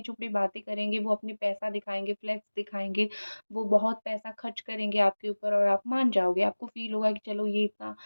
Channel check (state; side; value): inverted; both; correlation -1.00